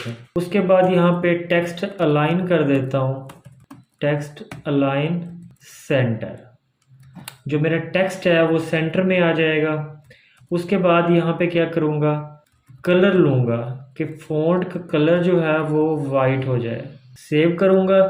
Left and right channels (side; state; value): both; identical; correlation 1.00